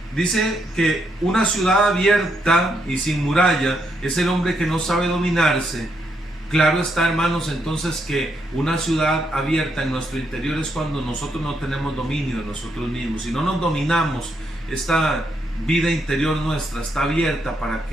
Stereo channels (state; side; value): normal; both; correlation 0.77